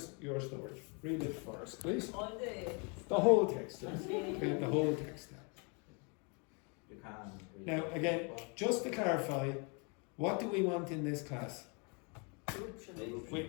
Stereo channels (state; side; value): quieter; right; 34.5 dB